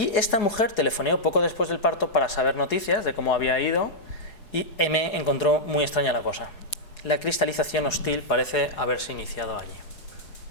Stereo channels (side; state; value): right; late; 4.9 ms